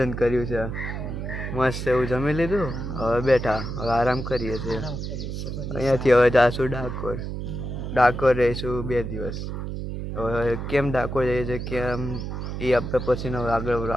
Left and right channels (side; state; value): right; noise; hum, 5 dB below the sound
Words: કર્યું છે મસ્ત એવું જમી લીધું. હવે બેઠા, હવે આરામ કરીએ છીએ. અહીંયાથી હવે જાશું ડાકોર. ડાકોર રહીશું 2 દિવસ. હવે કેમ ડાકોર જઈએ છીએ કેમ એ આપણે પછીનો આગળ